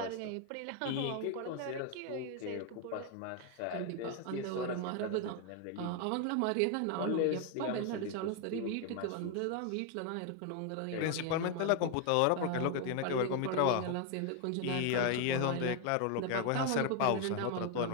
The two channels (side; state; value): both; different; correlation 0.01